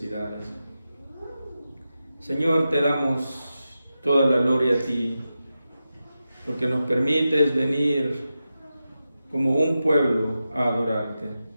Señor, te damos toda la gloria a ti, porque nos permites venir como un pueblo a adorarte.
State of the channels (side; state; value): both; inverted; correlation -0.91